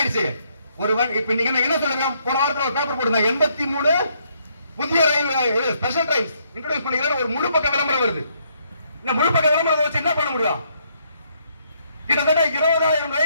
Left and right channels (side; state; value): both; inverted; correlation -0.71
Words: இப்ப நீங்க என்ன சொல்லுங்க? போன வாரத்துல ஒரு பேப்பர் போடுங்க, 83 புதிய ரயில் ஸ்பெஷல் ட்ரெயின்ஸ் இன்ட்ரோடியூஸ் பண்ணிக்கிறேன். ஒரு முழு பக்க விளம்பரம் வருது. இந்த முழு பக்க விளம்பரத்தை வச்சு என்ன பண்ண முடியும்? கிட்டத்தட்ட 20,000